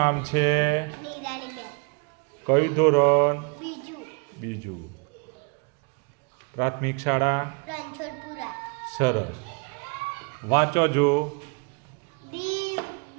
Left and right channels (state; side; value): quieter; left; 34.5 dB